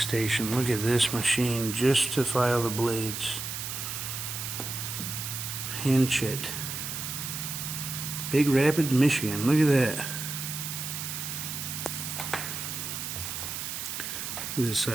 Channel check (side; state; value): right; noise; hiss, 5 dB below the sound